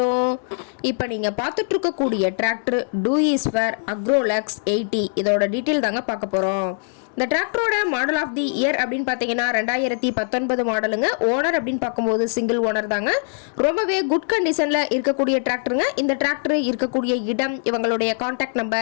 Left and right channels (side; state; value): right; silent; 64 dB below the other